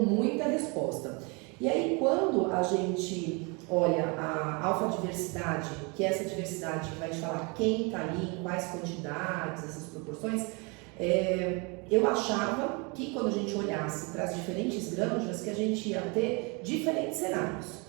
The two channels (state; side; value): quieter; left; 30.5 dB